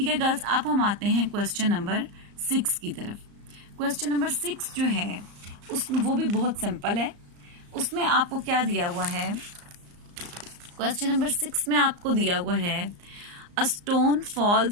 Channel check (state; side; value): late; left; 34 ms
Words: है गर्ल्स, अब हम आते हैं क्वेश्चन नंबर 6 की तरफ। क्वेश्चन नंबर 6 जो है वो भी बहुत सिंपल है। उसमें आपको क्या दिया हुआ है, क्वेश्चन नंबर 6 में आपको दिया हुआ है a stone